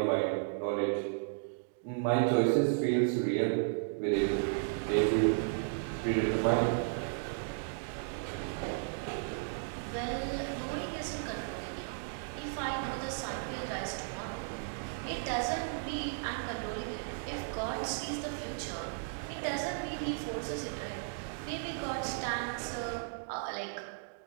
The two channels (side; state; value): left; silent; digital silence